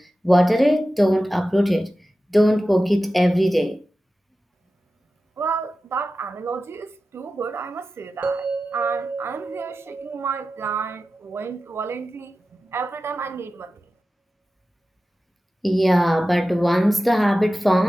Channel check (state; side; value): normal; both; correlation 0.94